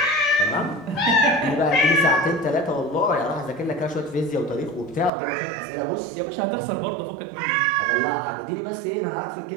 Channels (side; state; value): left; drops out; at 5.1 s